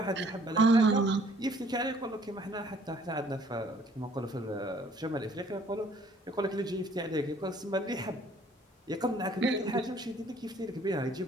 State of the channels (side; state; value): both; normal; correlation 0.59